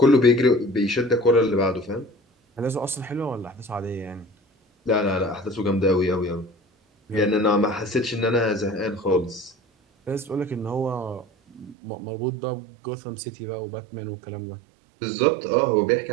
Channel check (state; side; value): drops out; left; at 11.8 s